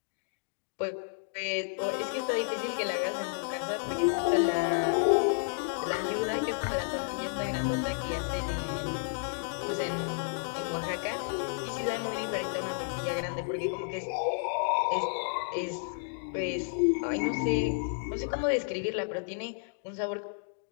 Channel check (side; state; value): right; silent; digital silence